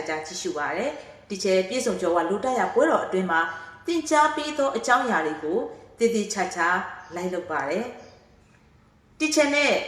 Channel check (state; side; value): identical; both; correlation 1.00